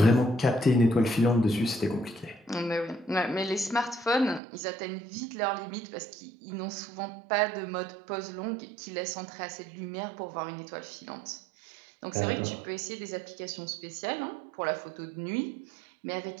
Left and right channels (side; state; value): left; drops out; at 4.4 s